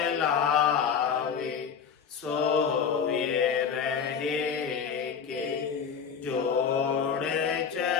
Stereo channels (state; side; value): quieter; right; 6.9 dB